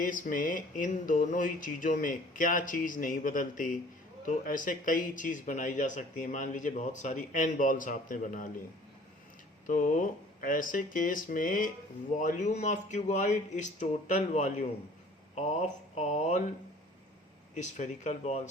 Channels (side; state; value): both; normal; correlation 0.51